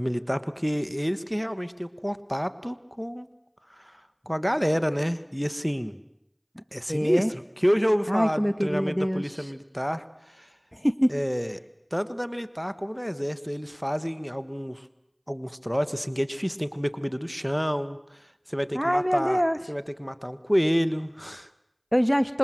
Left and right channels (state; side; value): identical; both; correlation 1.00